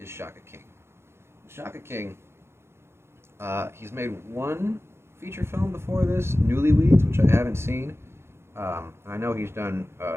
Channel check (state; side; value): late; left; 0.12 ms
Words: Shaka King. Shaka King, he's made one feature film before this, Newlyweds, which I haven't seen. I know he's done